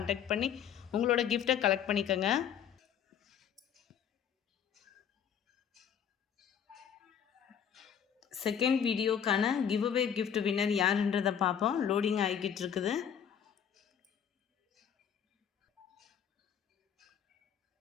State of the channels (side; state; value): right; quieter; 8.4 dB